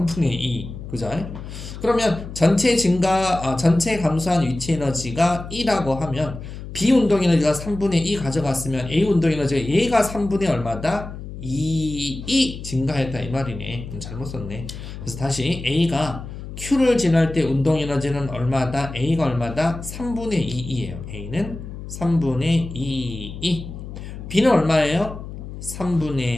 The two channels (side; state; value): left; noise; hum, 11 dB below the sound